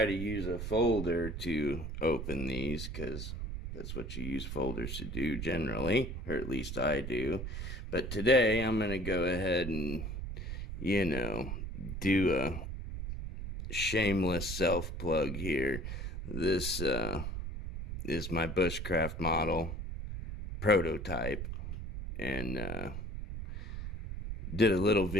to use a folder to open these because that's what you use folders to do generally, or at least I do. But today I'm going to go ahead and, do a shameless self-plug here. This is my bushcraft model prototype, and did a little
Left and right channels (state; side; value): noise; right; rumble, 6 dB below the sound